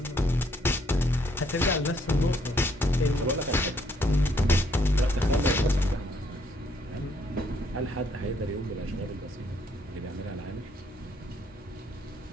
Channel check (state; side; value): normal; both; correlation 0.69